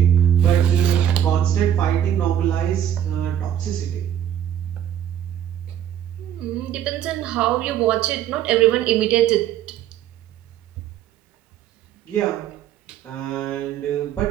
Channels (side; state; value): left; quieter; 10.4 dB